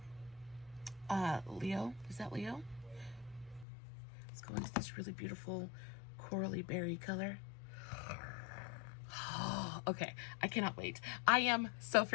Leo. Is that Leo? Let's go into this really beautiful corally berry color. Okay, I cannot wait. I am so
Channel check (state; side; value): drops out; right; at 3.7 s